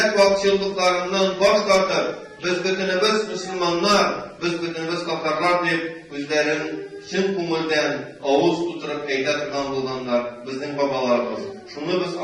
vakçılıklarından baş tartıp, biz bütünümüz Müslümanlar, biz bütünümüz kafarlar deyip, özlerin çın kumulden ağız tuturup eyletirgan bulganlar, bizim babalarımız. Şunu biz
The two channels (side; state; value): both; identical; correlation 1.00